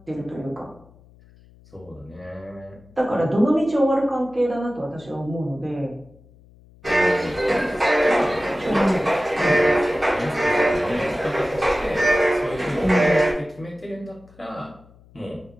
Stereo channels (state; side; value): noise; left; hum, 26 dB below the sound